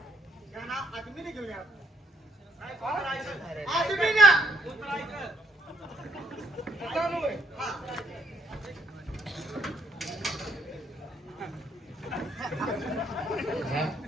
या ना, आदमीने घेऊन या. आदमी ना. हा.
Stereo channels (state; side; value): normal; both; correlation 0.69